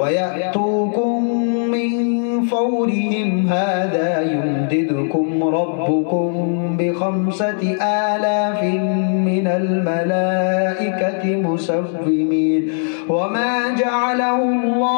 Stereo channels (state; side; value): silent; right; 67 dB below the other